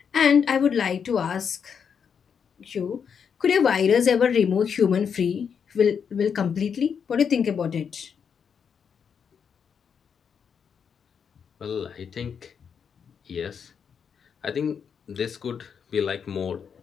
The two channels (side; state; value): right; quieter; 7.0 dB